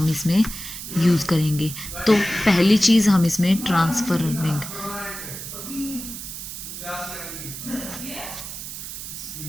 इसमें यूज़ करेंगे। तो पहली चीज़ हम इसमें ट्रांसफरिंग,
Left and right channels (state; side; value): noise; right; hiss, 9 dB below the sound